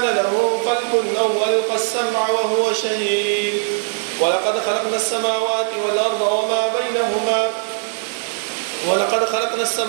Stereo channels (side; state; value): left; silent; 66 dB below the other